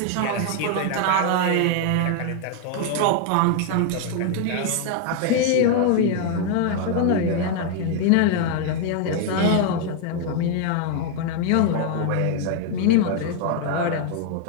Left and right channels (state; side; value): different; both; correlation 0.00